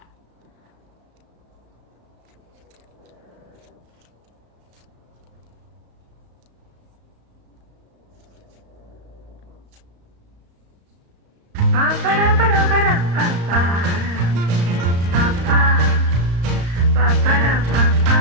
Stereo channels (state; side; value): late; left; 35 ms